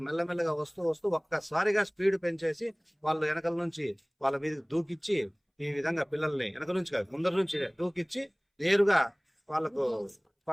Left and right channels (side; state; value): both; identical; correlation 1.00